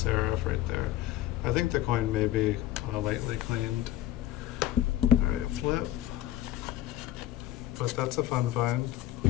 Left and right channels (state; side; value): quieter; right; 13.7 dB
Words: right there. I think the coin may be lightly cleaned. Alright, flip. But that's a fun find.